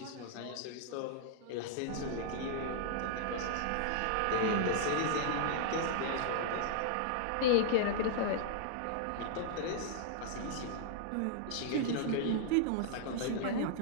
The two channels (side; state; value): both; different; correlation -0.01